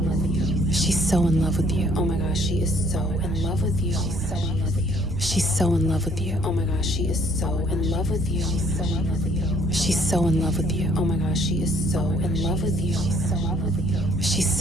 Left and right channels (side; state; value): both; normal; correlation 0.62